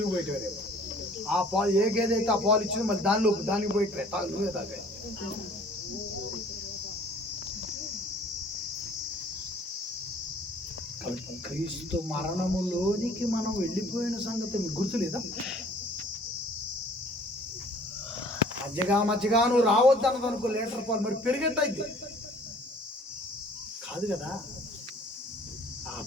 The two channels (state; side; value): normal; both; correlation 0.53